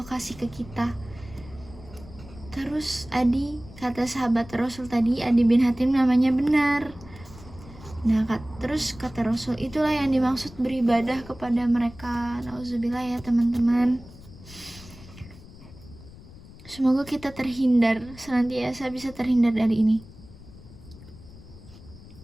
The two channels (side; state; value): left; noise; rumble, 18 dB below the sound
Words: kasih ke kita. Terus kata sahabat Rasul tadi, Adi bin Hatim namanya benar. Nah, terus kata Rasul, itulah yang dimaksud beribadah kepada mereka. Nauzubillah ya teman-teman. Semoga kita senantiasa bisa terhindar dari ini.